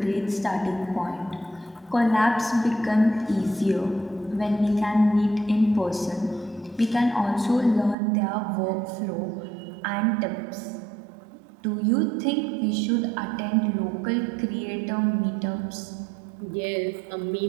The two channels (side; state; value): left; drops out; at 8.0 s